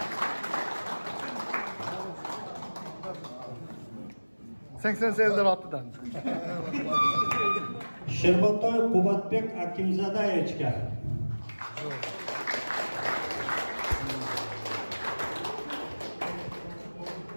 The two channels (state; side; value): inverted; both; correlation -1.00